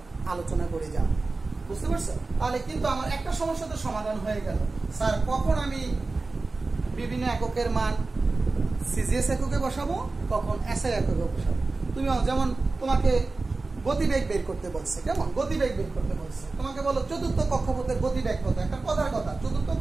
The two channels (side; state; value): left; quieter; 3.6 dB